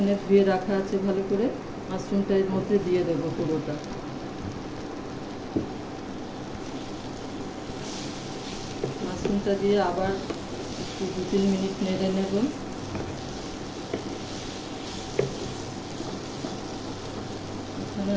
ধুয়ে রাখা আছে ভালো করে, মাশরুমটা এর মধ্যে দিয়ে দেবো পুরোটা। মাশরুমটা দিয়ে আবার একটু 2-3 মিনিট নেড়ে নেব। এখানে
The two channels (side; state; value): both; identical; correlation 1.00